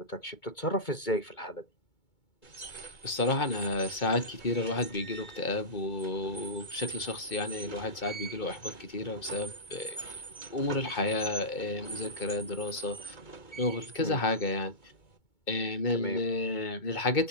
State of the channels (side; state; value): right; late; 2.2 ms